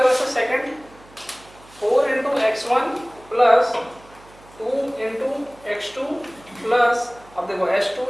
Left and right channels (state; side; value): noise; right; hum, 25 dB below the sound